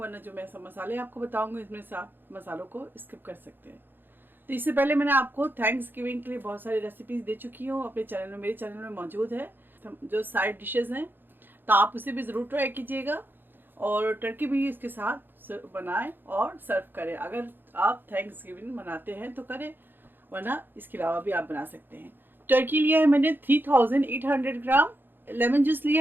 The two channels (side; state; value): left; late; 0.096 ms